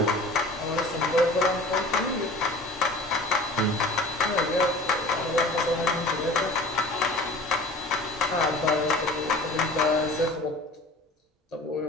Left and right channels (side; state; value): both; normal; correlation 0.42